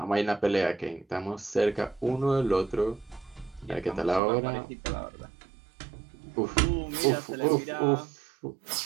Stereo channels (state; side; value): drops out; left; at 4.2 s